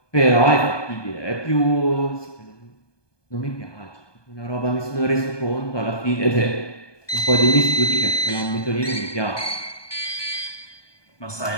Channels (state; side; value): late; right; 1.2 ms